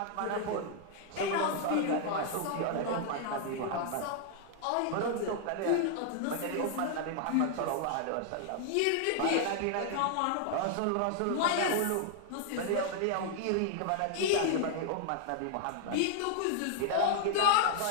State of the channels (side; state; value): both; different; correlation 0.00